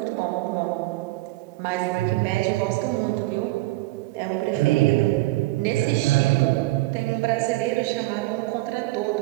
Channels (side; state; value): left; quieter; 19.9 dB